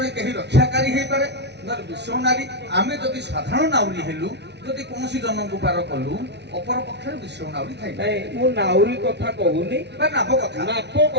କେହି ରକ୍ଷାକାରୀ ହେଇପାରେ, ନହେଲେ ବିଶ୍ୱ ନାରୀ। ଆମେ ଯଦି ସାଧାରଣ ନାଉରୀ ହେଲୁ, ଯଦି କୌଣସି ଜନଙ୍କୁ ପାର କଲୁ, ଅପର ପକ୍ଷରେ ବିଶ୍ୱ ନାଉରୀ ଥାଇପାରେ ନାଇଁ ମୁଁ ନାଉରୀ କଥା କହୁନି, ବା ନାବ କଥା। ନାବ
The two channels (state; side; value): late; left; 0.50 ms